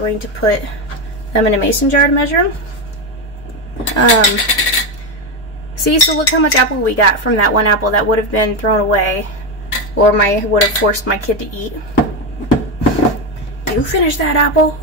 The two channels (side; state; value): both; normal; correlation 0.11